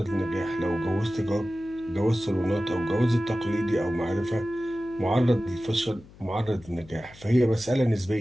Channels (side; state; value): left; noise; hum, 22 dB below the sound